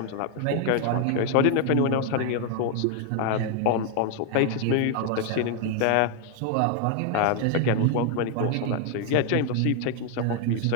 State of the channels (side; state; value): both; different; correlation 0.00